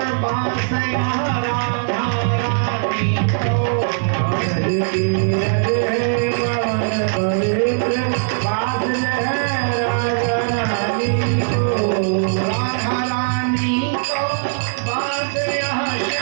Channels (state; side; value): silent; left; digital silence